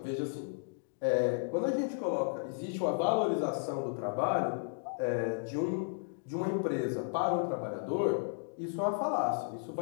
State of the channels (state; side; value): silent; right; digital silence